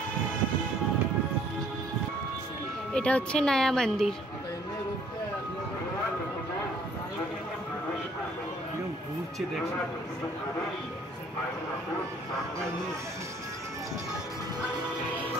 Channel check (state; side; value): normal; both; correlation 0.60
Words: এটা হচ্ছে নয়া মন্দির। ঘুরছে দেখছি।